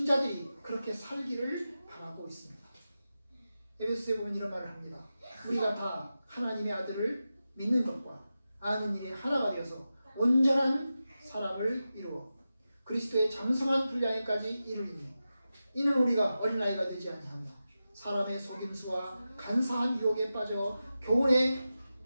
그렇게 살기를 바라고 있습니다. 에베소서에 보면 이런 말을 합니다. 우리가 다 하나님의 아들을 믿는 것과 아는 일이 하나가 되어서 온전한 사람을 이루어 그리스도의 장성한 분량에까지 이르리니, 이는 우리가 어린아이가 되지 아니하며 사람의 속임수와 간사한 유혹에 빠져 교훈의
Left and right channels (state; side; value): inverted; both; correlation -0.92